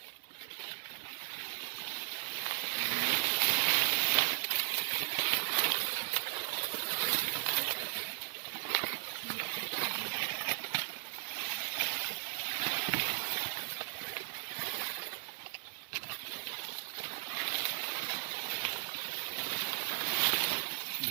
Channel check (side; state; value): left; silent; 53 dB below the other